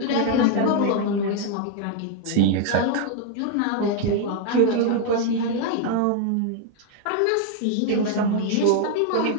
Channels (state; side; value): different; both; correlation 0.00